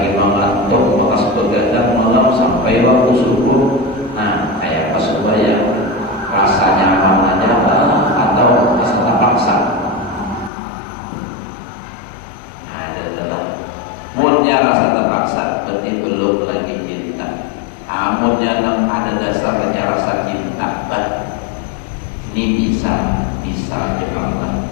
mengantuk, maka begadang malam sampai waktu subuh. Nah, kayak apa supaya rasa nyaman aja atau rasa terpaksa? Nah, adalah mulnya rasa terpaksa berarti belum lagi cinta. Namunnya ada dasarnya rasa cinta, ini bisa jemaah.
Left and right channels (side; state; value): right; drops out; at 10.5 s